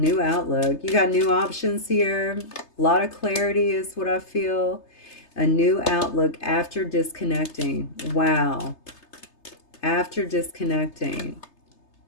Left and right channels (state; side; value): late; right; 3.3 ms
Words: outlook. You got new options here. A lot of clarity is what I feel. A new outlook after disconnecting. Wow. After disconnecting